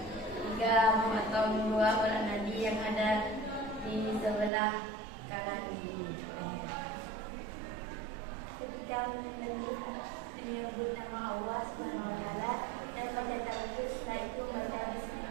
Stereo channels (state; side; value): drops out; left; at 4.5 s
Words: 3. Memotong 2 urat nadi yang ada di sebelah kanan kiri. Ketika menyembelih, menyebut nama Allah Subhanahu wa taala dan baca takbir, setelah itu baca